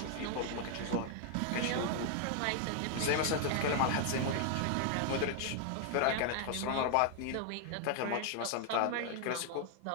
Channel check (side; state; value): both; different; correlation 0.00